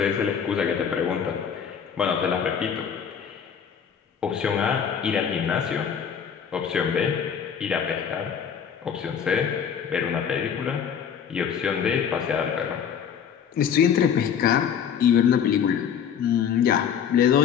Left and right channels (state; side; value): quieter; right; 7.8 dB